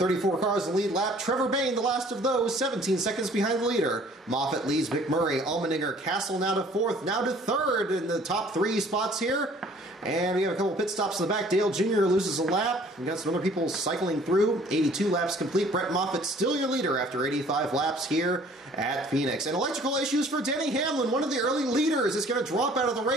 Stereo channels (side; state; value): both; normal; correlation 0.55